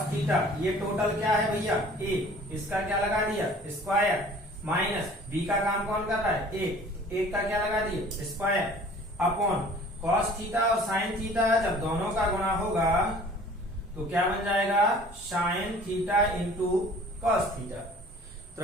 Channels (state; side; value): normal; both; correlation 0.49